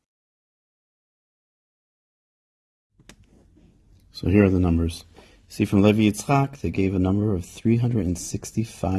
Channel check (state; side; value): identical; both; correlation 1.00